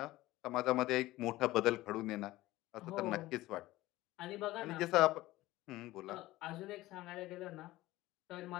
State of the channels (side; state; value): right; quieter; 17.4 dB